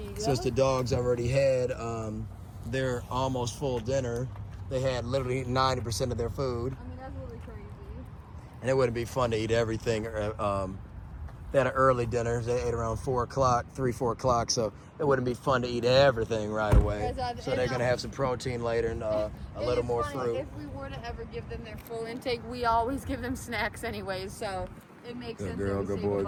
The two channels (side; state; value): both; identical; correlation 1.00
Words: go. Since the dogs already had their almost full dinner, they had literally 90% of their food. I mean, that's really crazy. And it wouldn't be fun to eat everything. They had an early dinner. They ate around 4 o'clock, 3, 4 o'clock. So it wouldn't be fun to eat everything right away. So they're going to have some protein later and a little more fruit. If we were to ever give them their full intake, we always give them snacks anyways. So it makes sense. Good girl, that we good save a boy,